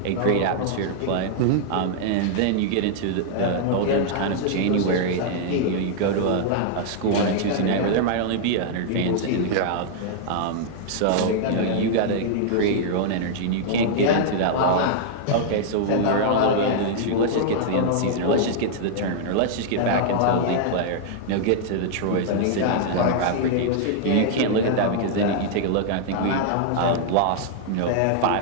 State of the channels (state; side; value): different; both; correlation -0.01